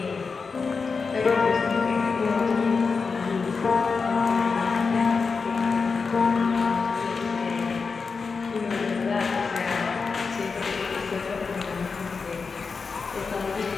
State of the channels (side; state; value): right; quieter; 4.9 dB